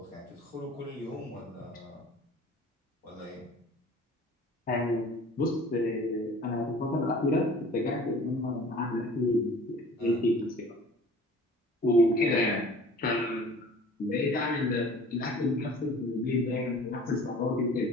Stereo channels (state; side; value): normal; both; correlation 0.47